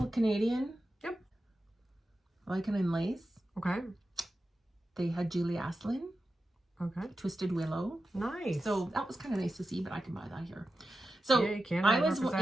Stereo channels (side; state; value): both; normal; correlation 0.92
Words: of Canadian. Yep. Lichen and Lace. Okay. They had Julie Aslin. Okay. Twisted Willow. Nice. So that was kind of nice to see, but I can buy that here. So yeah, I was